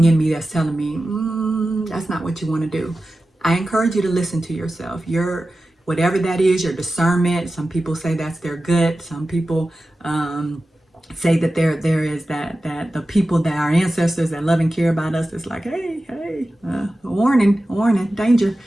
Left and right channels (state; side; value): normal; both; correlation 0.94